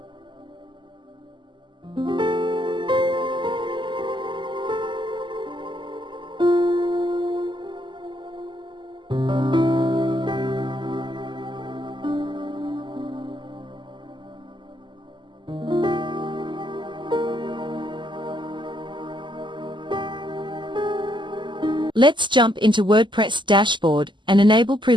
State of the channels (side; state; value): left; late; 0.23 ms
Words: Let's jump into WordPress dashboard and enable